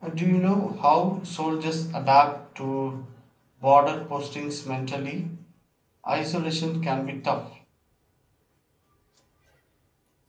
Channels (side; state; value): both; identical; correlation 1.00